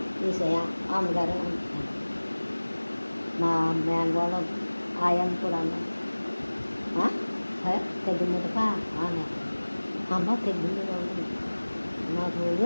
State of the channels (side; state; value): both; inverted; correlation -1.00